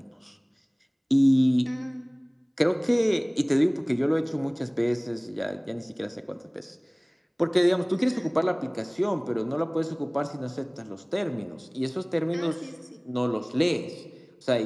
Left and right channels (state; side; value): identical; both; correlation 1.00